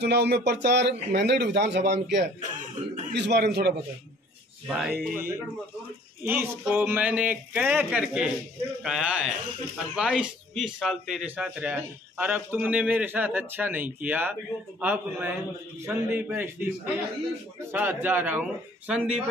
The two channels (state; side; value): normal; both; correlation 0.55